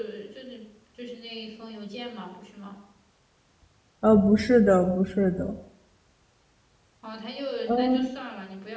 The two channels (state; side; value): identical; both; correlation 1.00